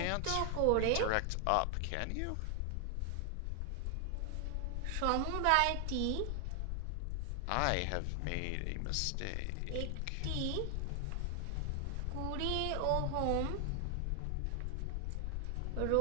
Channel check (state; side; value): different; both; correlation 0.00